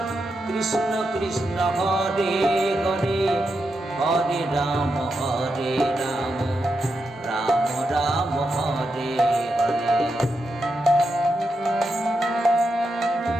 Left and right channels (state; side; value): normal; both; correlation 0.86